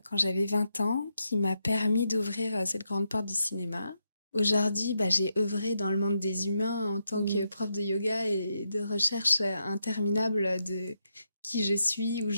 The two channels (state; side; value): inverted; both; correlation -0.83